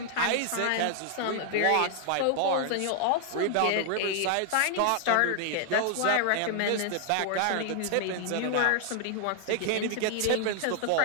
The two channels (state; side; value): different; both; correlation 0.00